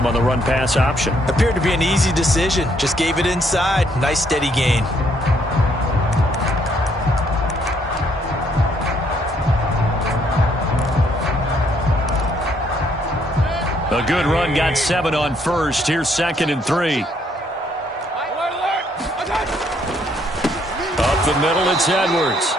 on the run-pass option. Appeared to be an easy decision. Just gave it inside. Nice steady gain. A good run, got 7 on first. Here's 2nd and 3. Up the middle, it's Edwards.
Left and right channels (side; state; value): both; normal; correlation 0.69